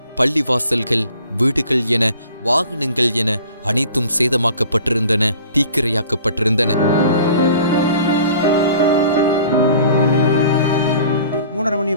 பள்ளிவாசல்கள், வீடுகள் என வாகனங்கள் என அனைத்தும் சேதமாக்கப்பட்டிருந்தன, தீக்கிரையாக்கப்பட்டிருந்தன. 3:30 மணி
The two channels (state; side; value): inverted; both; correlation -0.48